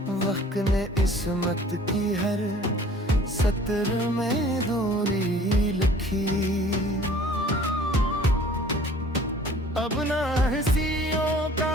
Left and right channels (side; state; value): both; normal; correlation 0.50